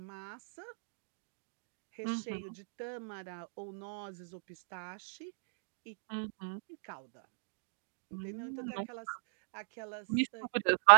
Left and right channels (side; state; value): left; silent; digital silence